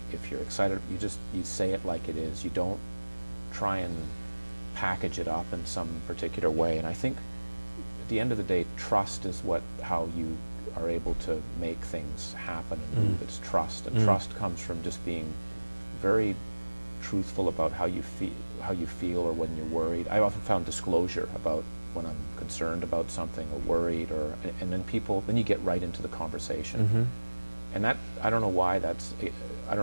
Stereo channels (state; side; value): inverted; both; correlation -1.00